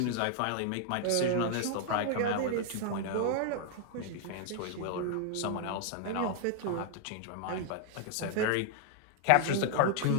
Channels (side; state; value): both; different; correlation 0.00